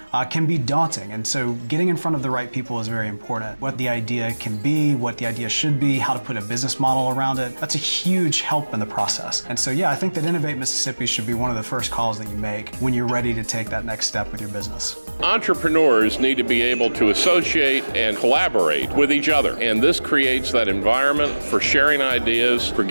can be daunting, and so getting in front of the right people is very important. What the idea can be, what the idea should be, how to put a business model around it, that's a huge help in the process. And so yeah, I think that Innovate Mississippi should be one of the first calls that you make when you're ready to take that next step with your business. Entrepreneurs need to be able to associate and collaborate with each other, and this creates that environment for sharing ideas, for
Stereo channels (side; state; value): both; inverted; correlation -1.00